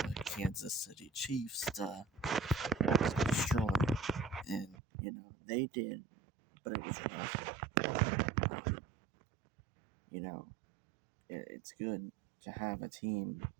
Kansas City Chiefs to destroy, and they did, but it was rough. Um, you know, it's good to have a team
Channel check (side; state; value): left; drops out; at 4.8 s